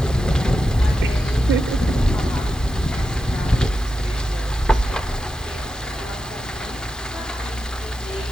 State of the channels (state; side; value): normal; both; correlation 0.89